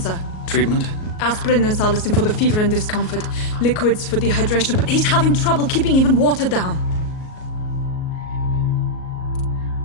Treatment? Aspirin and salicin for the fever and discomfort. Liquids for dehydration, but he's having trouble keeping even water down.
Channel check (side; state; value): right; late; 38 ms